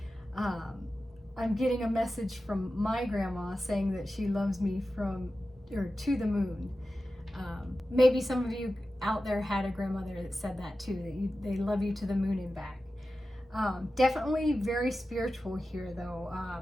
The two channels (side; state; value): both; normal; correlation 0.93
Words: I'm getting a message from my grandma saying that she loves me to the moon. Maybe some of you out there had a grandmother that said that too, that they love you to the moon and back. Definitely very spiritual here though.